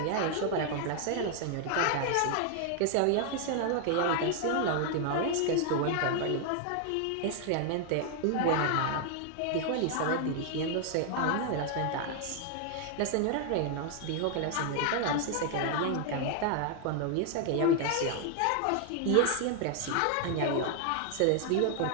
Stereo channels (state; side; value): different; both; correlation 0.00